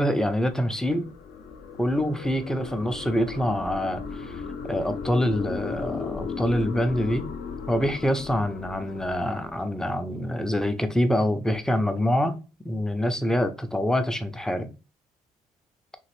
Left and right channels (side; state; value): both; normal; correlation 0.88